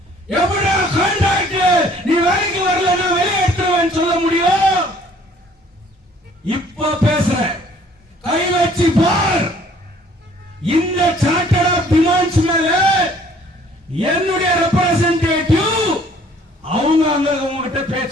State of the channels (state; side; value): normal; both; correlation 0.57